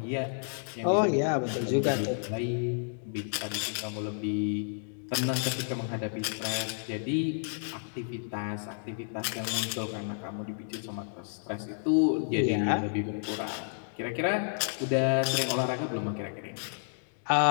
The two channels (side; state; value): right; silent; digital silence